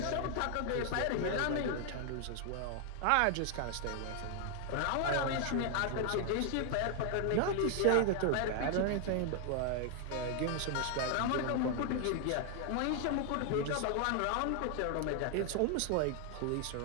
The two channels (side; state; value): both; different; correlation 0.00